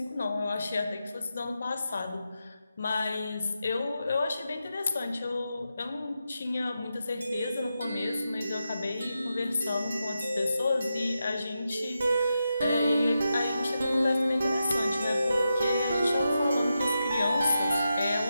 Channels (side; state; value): both; inverted; correlation -0.88